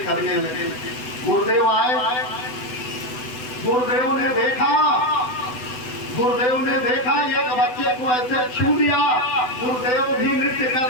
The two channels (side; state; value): right; late; 8.0 ms